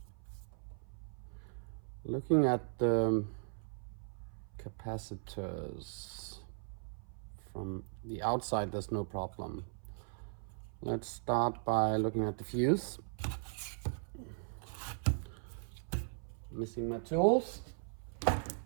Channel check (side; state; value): left; silent; 52 dB below the other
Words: looking at the capacitors from the outside, there's no problem. Let's start by looking at the fuse. Missing my tools.